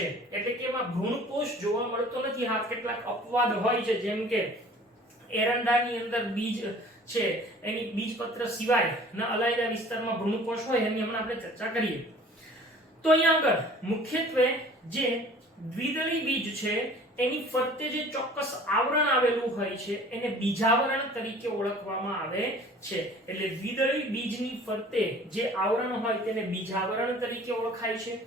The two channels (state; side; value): normal; both; correlation 0.48